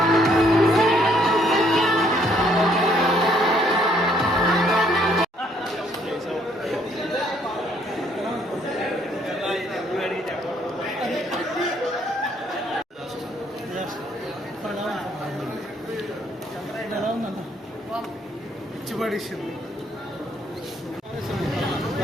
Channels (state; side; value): normal; both; correlation 0.67